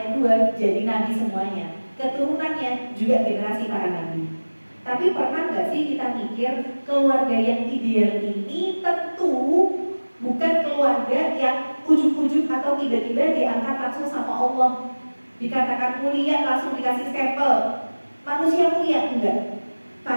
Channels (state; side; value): inverted; both; correlation -1.00